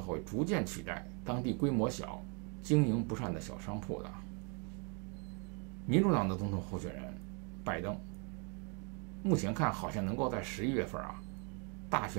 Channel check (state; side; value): quieter; left; 36.4 dB